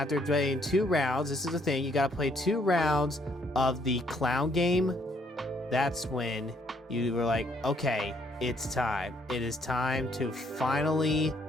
playing 2 rounds, this is the thing, you gotta play 2 rounds of the clown game. That's when you were like, okay, it's time. It is time to finally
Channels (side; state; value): both; normal; correlation 0.69